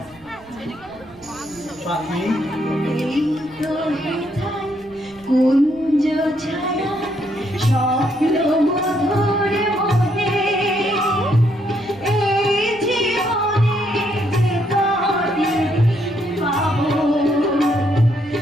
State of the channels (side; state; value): right; noise; rumble, 26 dB below the sound